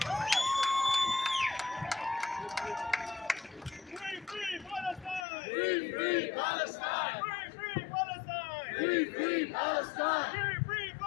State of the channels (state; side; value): drops out; right; at 5.2 s